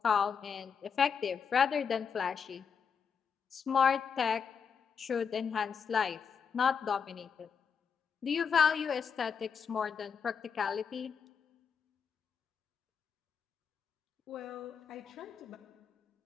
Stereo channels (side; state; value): right; quieter; 6.5 dB